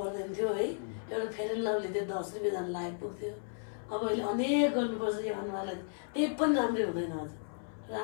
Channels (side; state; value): right; silent; 55 dB below the other